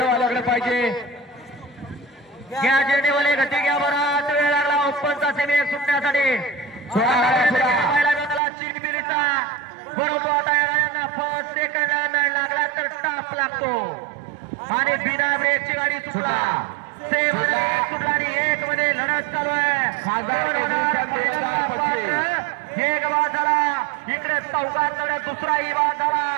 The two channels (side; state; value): left; drops out; at 8.4 s